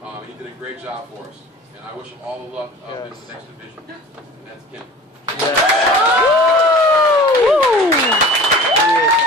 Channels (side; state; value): both; normal; correlation 0.41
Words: He did a great job for us. And I wish him all the luck in the next division. And that's Kim.